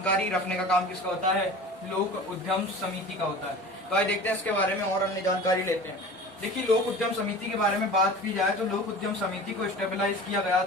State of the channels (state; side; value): normal; both; correlation 0.38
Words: रखने का काम किसका होता है? लोक उद्यम समिति का होता है। तो आइए देखते हैं इसके बारे में और अन्य जानकारी लेते हैं। देखिए, लोक उद्यम समिति के बारे में बात की जाए तो लोक उद्यम समिति को स्टेबलाइज किया गया